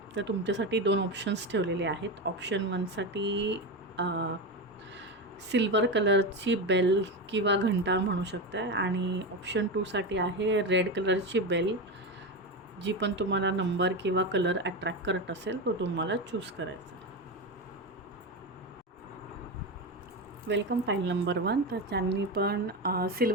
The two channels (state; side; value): normal; both; correlation 0.17